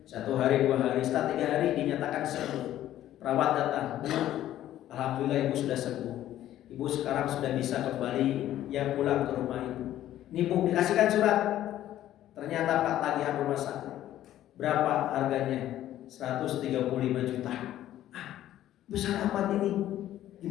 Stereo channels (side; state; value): right; quieter; 12.8 dB